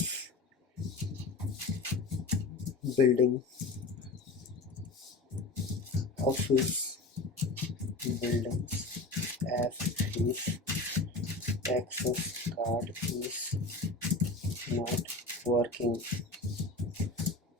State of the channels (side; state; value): right; quieter; 3.3 dB